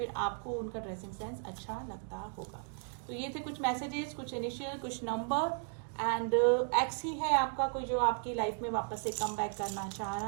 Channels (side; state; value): left; silent; 54 dB below the other